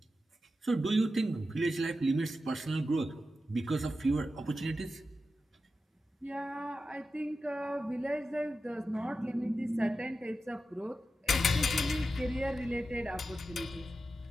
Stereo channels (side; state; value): both; normal; correlation 0.91